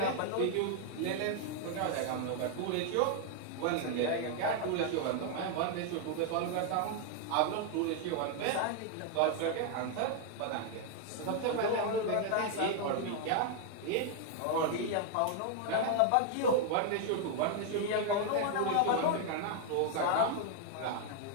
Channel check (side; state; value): both; different; correlation 0.00